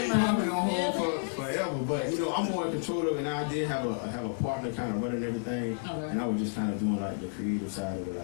plumbing on hold for forever, but I'm more in control of it, and I did have a partner kind of running everything, and I was just kind of doing like the creative side of it,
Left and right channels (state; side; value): silent; right; digital silence